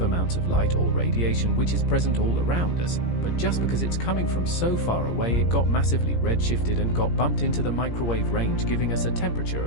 amounts of light or radiation which is present all around us, but just because it's coming from so far away it got massively redshifted and got bumped into the microwave range, giving us a temperature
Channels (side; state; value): right; late; 17 ms